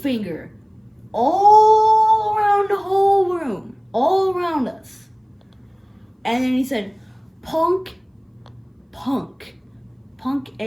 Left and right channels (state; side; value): identical; both; correlation 1.00